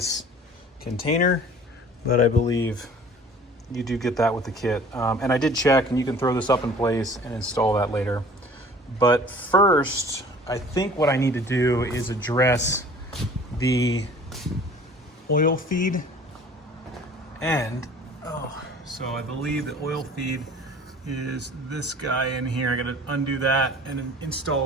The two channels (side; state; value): both; normal; correlation 0.48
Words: container, but I believe you do get that with the kit. And I did check, and you can throw this up in place and install that later. But first, I think what I need to do is address the oil feed end. So I believe the oil feed is this guy in here. I gotta undo that and